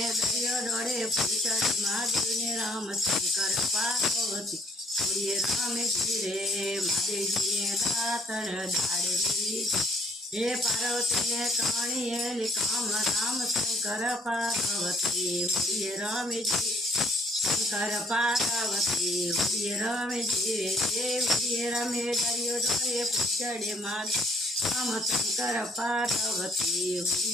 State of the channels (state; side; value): normal; both; correlation 0.62